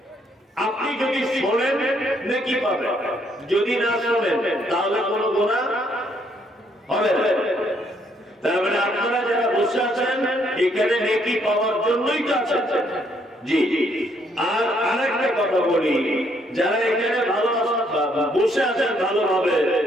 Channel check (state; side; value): normal; both; correlation 0.70